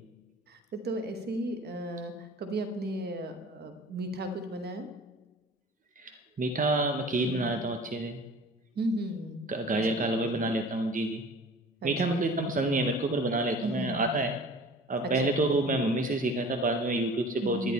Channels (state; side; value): normal; both; correlation 0.44